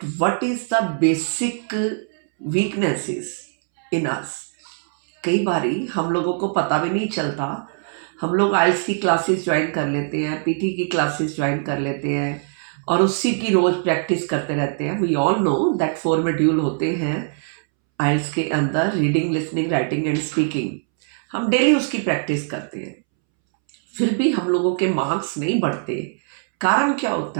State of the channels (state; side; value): silent; left; 64 dB below the other